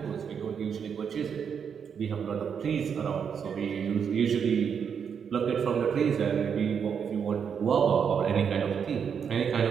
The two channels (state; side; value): quieter; left; 7.1 dB